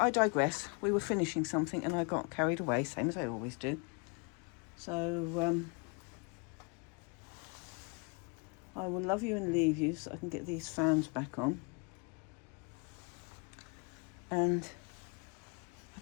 digress. We were finishing something and I got carried away, same as I always do. So, I will love you and leave you so I can get these fans back on. And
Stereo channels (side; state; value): right; quieter; 33.6 dB